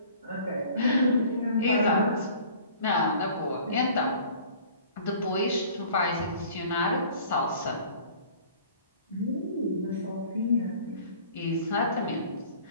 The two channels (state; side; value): inverted; both; correlation -0.49